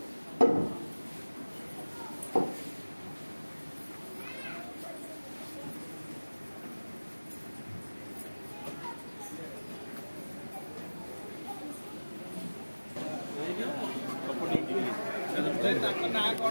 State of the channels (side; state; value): both; inverted; correlation -1.00